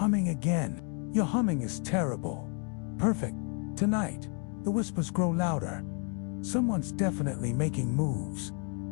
again. Your humming is terrible. Perfect. Tonight, the whispers grow louder. Someone's definitely making moves.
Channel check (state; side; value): quieter; right; 38.7 dB